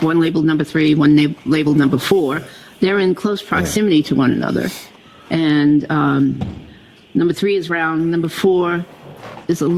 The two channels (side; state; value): both; identical; correlation 1.00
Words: one labeled number 3, one labeled number 4. They're in close proximity to one another. And number 3 is round, number 4 is a